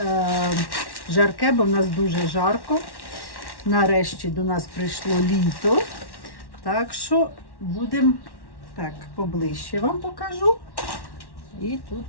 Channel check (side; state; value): right; late; 1.1 ms